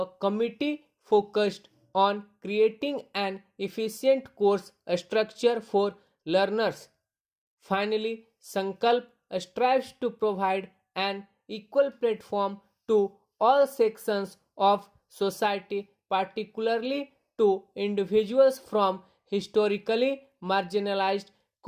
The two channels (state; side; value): identical; both; correlation 1.00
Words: committee focused on creating an efficient course structure for learners. Finally, Sankalp strives to provide an equal platform to all sections of society, particularly to individuals from historically marginalized